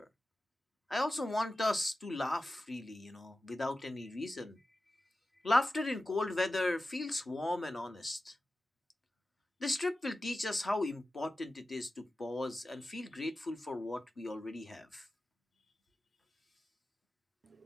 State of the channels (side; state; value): both; normal; correlation 0.94